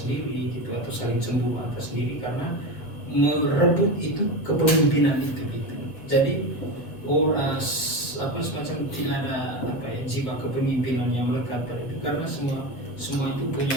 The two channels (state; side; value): late; right; 7.7 ms